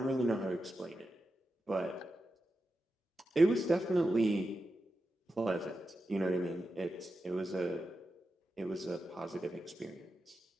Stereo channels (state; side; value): normal; both; correlation 0.90